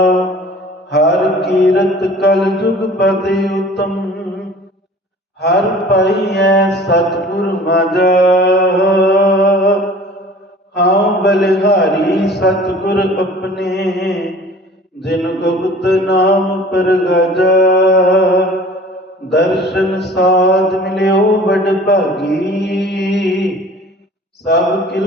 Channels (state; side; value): normal; both; correlation 0.46